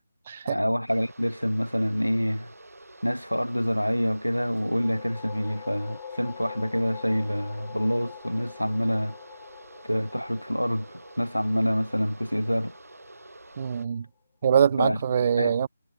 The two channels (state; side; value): inverted; both; correlation -0.92